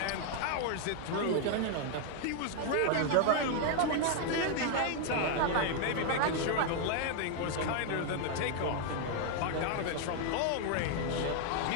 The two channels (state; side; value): different; both; correlation 0.00